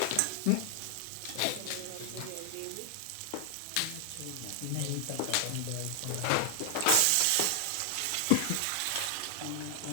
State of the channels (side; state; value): both; different; correlation 0.00